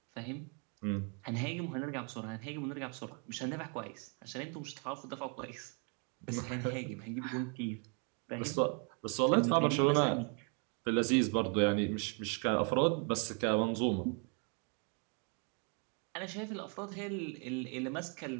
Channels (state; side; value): quieter; left; 38.0 dB